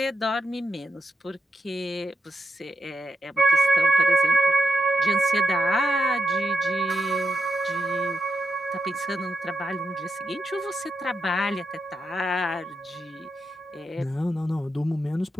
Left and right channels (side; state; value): both; normal; correlation 0.85